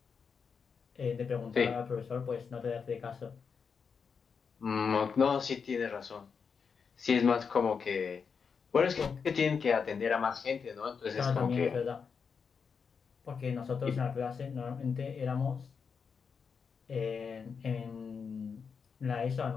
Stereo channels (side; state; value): right; quieter; 6.0 dB